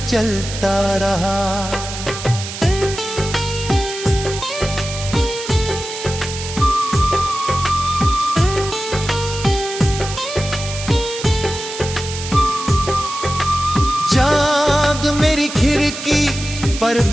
चलता रहा। चाँद मेरी खिड़की पर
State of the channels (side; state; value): right; noise; hiss, 9 dB below the sound